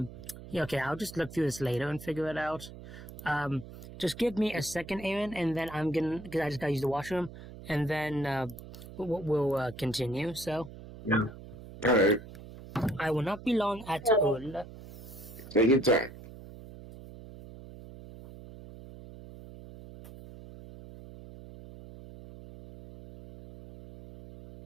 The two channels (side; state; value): right; noise; hum, 15 dB below the sound